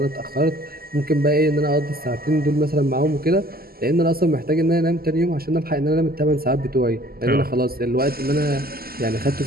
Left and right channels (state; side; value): late; left; 0.44 ms